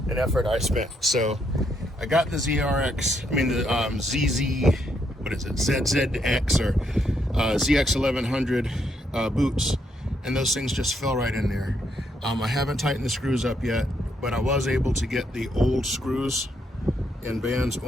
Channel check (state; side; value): normal; both; correlation 0.76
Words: effort I spent. So I got the ZRX, I mean the ZZ, what is it, ZZX or ZX 1100 boots, and those things just fell right in there. I haven't tightened the screws up yet, but I was able to get the old screws and bands